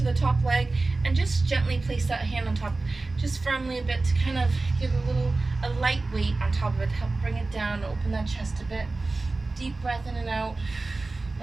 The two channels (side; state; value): left; quieter; 3.4 dB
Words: the top leg and just gently place that hand on top, just firmly a bit to kind of give a light weight on top of it, to help bring it down, open that chest a bit. Deep breath in and out.